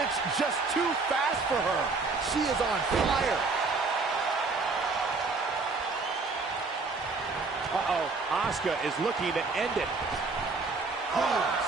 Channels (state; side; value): quieter; left; 4.0 dB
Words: just too fast for her. She is on fire. Uh-oh, Asuka is looking to end it.